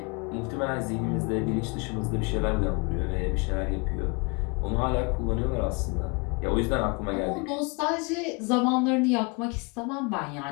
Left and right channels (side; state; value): right; quieter; 31.1 dB